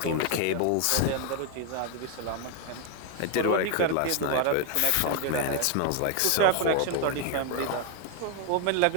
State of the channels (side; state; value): both; different; correlation 0.00